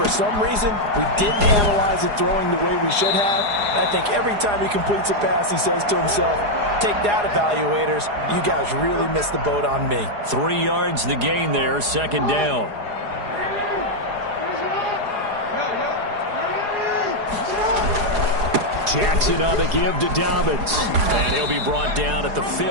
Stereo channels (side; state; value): left; late; 4.8 ms